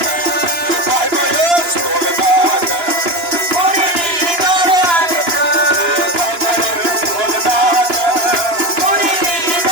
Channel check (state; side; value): late; left; 2.9 ms